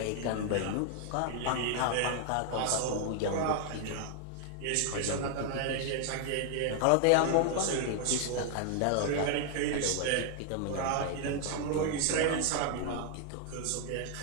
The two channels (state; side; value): different; both; correlation 0.00